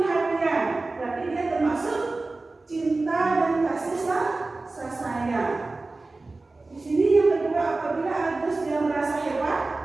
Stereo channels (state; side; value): quieter; left; 3.3 dB